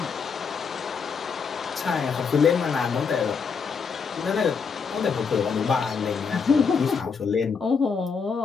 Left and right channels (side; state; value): right; quieter; 5.7 dB